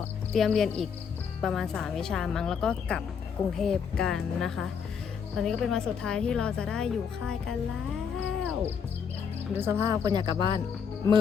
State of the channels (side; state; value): right; quieter; 6.8 dB